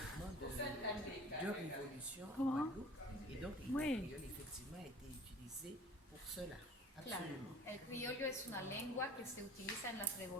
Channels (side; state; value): both; normal; correlation 0.46